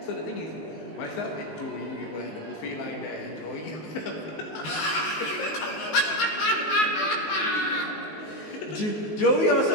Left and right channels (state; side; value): late; right; 19 ms